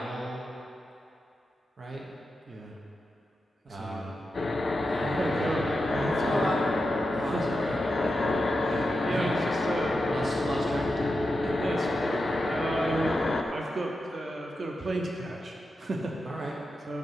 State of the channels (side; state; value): both; normal; correlation 0.89